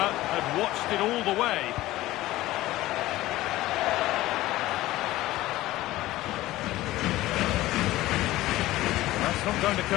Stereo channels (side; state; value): right; quieter; 16.7 dB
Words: had watched it all the way. Not going to